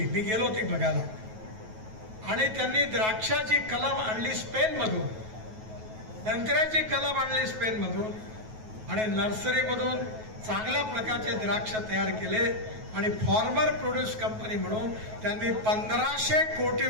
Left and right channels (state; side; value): late; left; 9.3 ms